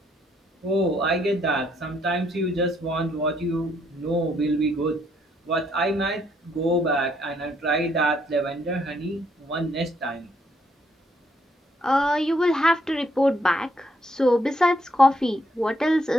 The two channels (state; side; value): normal; both; correlation 0.72